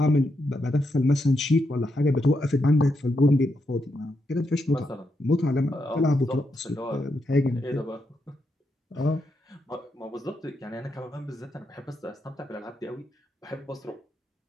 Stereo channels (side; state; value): both; normal; correlation 0.82